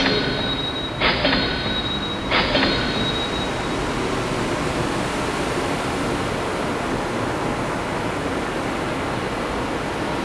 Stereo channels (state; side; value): identical; both; correlation 1.00